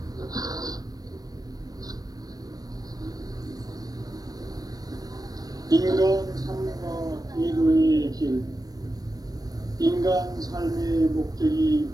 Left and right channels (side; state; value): left; late; 0.18 ms